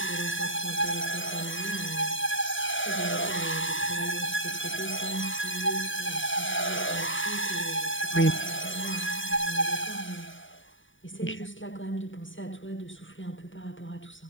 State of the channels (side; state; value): right; late; 0.56 ms